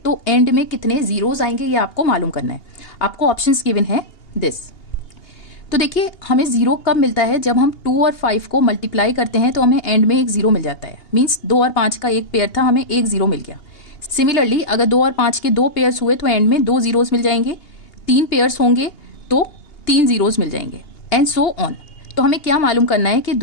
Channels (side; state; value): right; late; 2.8 ms